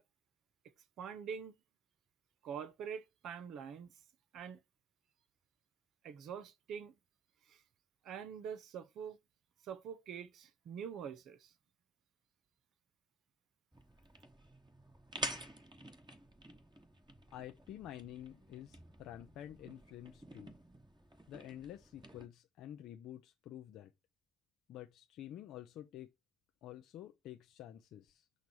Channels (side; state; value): both; normal; correlation 0.40